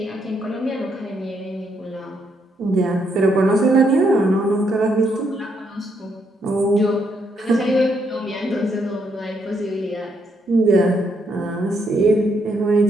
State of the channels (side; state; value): both; normal; correlation 0.75